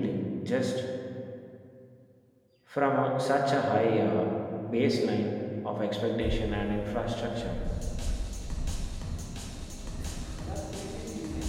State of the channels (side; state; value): both; identical; correlation 1.00